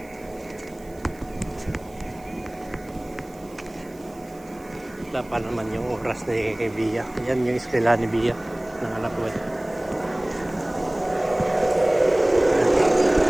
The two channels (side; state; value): right; noise; hiss, 26 dB below the sound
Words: wala pa naman yung oras ni Bia. Yan yung eskwela ni Bia ng anak ko.